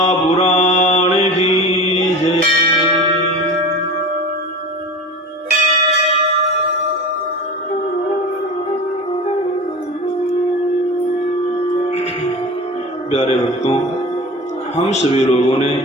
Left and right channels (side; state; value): both; normal; correlation 0.32